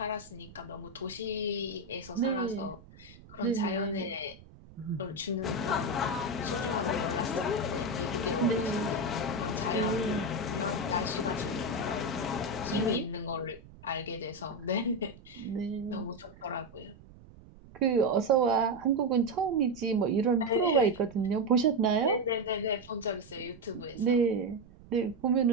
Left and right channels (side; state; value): right; noise; rumble, 21 dB below the sound